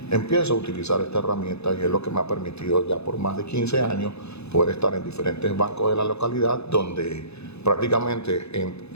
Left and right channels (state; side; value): late; right; 0.80 ms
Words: empiezo a utilizar esta herramienta y es lo que me ha permitido ya por más de 15 años poder estar en diferentes bancos de la localidad donde prácticamente